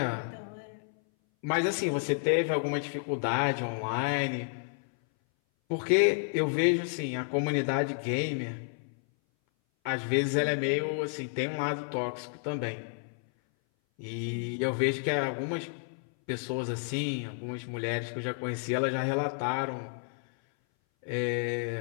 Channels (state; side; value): silent; right; 57 dB below the other